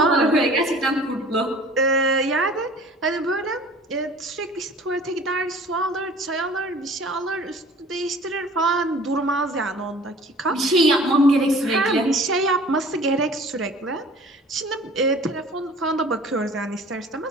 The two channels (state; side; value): normal; both; correlation 0.47